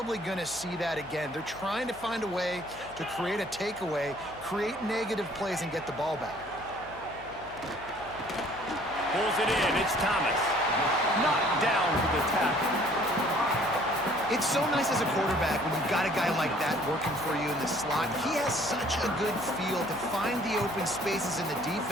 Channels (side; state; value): left; noise; hum, 20 dB below the sound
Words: going to see that again. They're trying to find a way to create a takeaway, create negative plays, and get the ball back. Pulls it in. It's Thomas. Knocked down for the tackle. It's so nice as a quarterback when you've got a guy like that working for you in the slot. He has such a good feel to find the open spaces in the